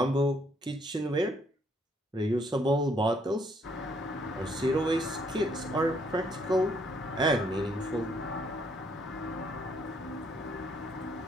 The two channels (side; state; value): both; normal; correlation 0.69